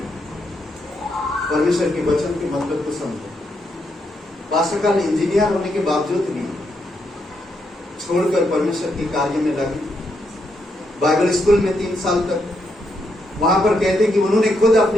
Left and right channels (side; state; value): both; normal; correlation 0.79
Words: परमेश्वर के वचन के मतलब को समझे। पास्टर का इंजीनियर होने के बावजूद भी छोड़कर परमेश्वर के कार्य में लगे। बाइबल स्कूल में 3 साल तक, वहां पर कहते कि उन्होंने खुद